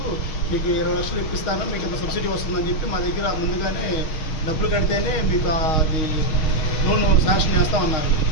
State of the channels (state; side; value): late; right; 6.4 ms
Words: 20 లక్షలు ఇప్పిస్తాను, మీకు ఇంత సబ్సిడీ వస్తుందని చెప్పి మా దగ్గర ముందుగానే డబ్బులు కడితేనే మీకు అది లోన్ శాంక్షన్ చేస్తామన్నారు.